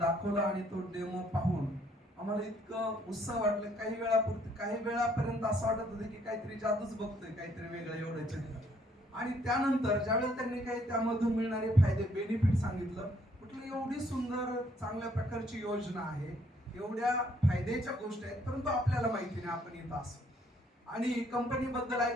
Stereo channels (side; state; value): both; normal; correlation 0.66